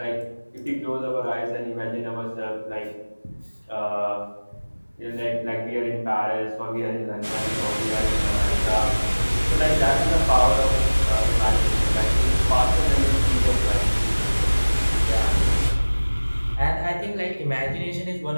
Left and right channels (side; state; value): both; inverted; correlation -1.00